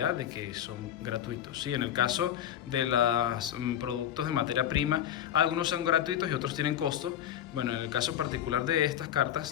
de que son gratuitos. ¿Sí? En el caso de los productos de materia prima, algunos son gratuitos y otros tienen costo. Bueno, en el caso particular de estas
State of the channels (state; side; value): quieter; right; 10.5 dB